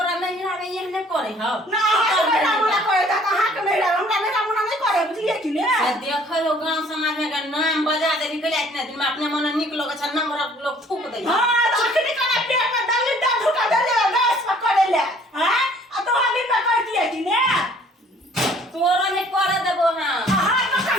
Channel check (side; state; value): both; normal; correlation 0.56